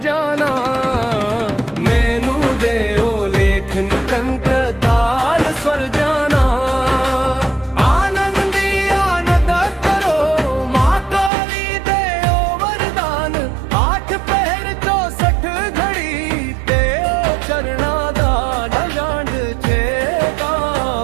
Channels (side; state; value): left; drops out; at 11.3 s